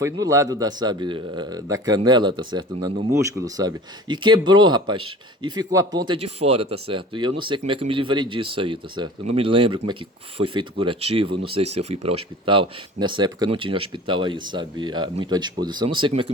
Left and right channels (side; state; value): both; normal; correlation 0.41